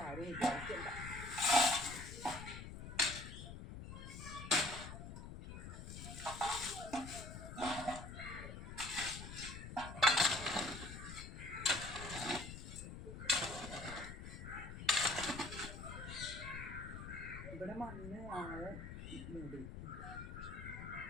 ആരും വിചാരിച്ചില്ല. ഇവിടെ മണ്ണ് ആളെ മൂടി.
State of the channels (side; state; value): left; noise; rumble, 9 dB below the sound